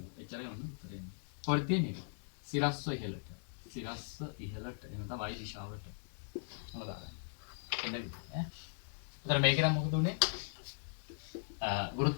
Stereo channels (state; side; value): silent; right; digital silence